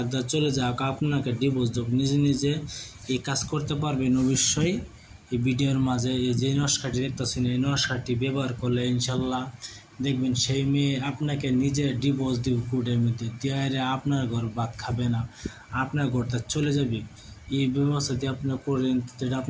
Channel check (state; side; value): identical; both; correlation 1.00